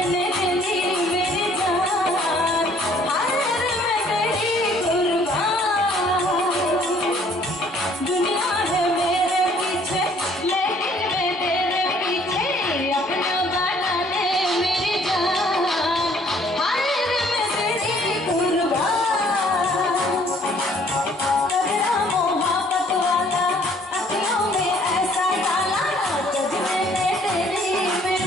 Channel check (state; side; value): normal; both; correlation 0.60